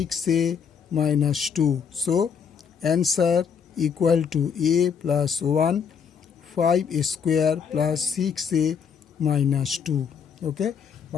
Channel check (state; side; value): quieter; right; 6.9 dB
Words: minus 2, so answer equal to a plus 1 5a square plus 6a minus 2। ওকে,